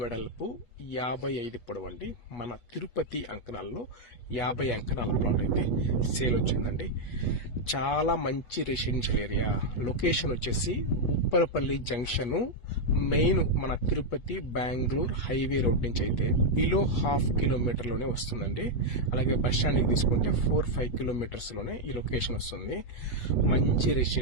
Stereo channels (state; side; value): late; right; 8.2 ms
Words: వెడల్పు 55 పొడవు అండి. మన తిరుపతి అంకణాల్లో 50 అంకణాల ప్లాట్ అయితే సేల్ వచ్చిందండి. చాలా మంచి రెసిడెన్షియల్ ఏరియా. లొకేషన్ వచ్చేసి ఉప్పరపల్లి జంక్షన్ మెయిన్ మన తిరుపతి బెంగళూరు హైవే రోడ్ నుంచి అయితే బిలో 1/2 కిలోమీటర్లోనే వస్తుందండి. అలాగే బస్ స్టాండ్కి తీసుకుంటే 4-5 కిలోమీటర్స్ లోనే ఈ లొకేషన్ వస్తుంది. మంచి